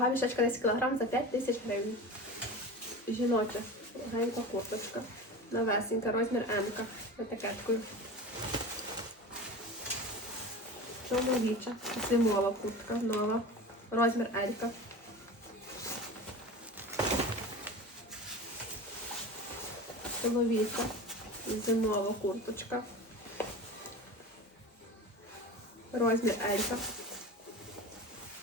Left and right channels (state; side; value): normal; both; correlation 0.31